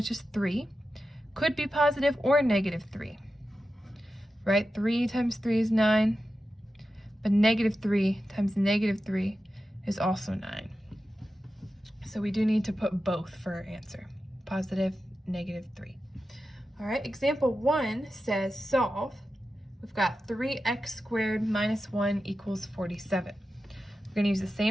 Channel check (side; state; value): both; normal; correlation 0.92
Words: is 3. Could be positive or negative 3. Right? 3 times 3 is 9. But negative 3 times negative 3 is also 9. So we do need to put both for our answer. Positive, negative 3. All right, example 1 says solve. We've got 3x squared minus 1 equals 47. We're going to use the